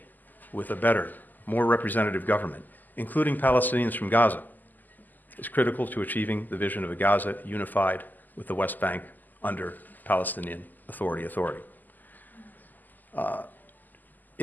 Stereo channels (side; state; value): right; late; 0.085 ms